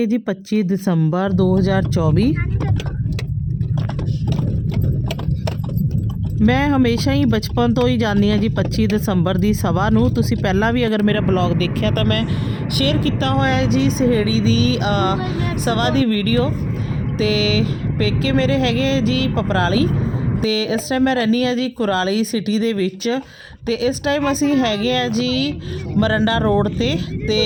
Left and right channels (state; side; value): identical; both; correlation 1.00